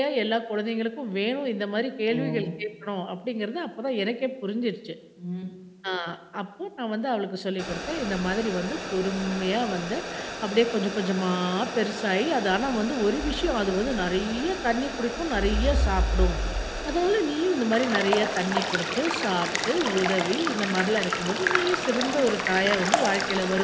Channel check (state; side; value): identical; both; correlation 1.00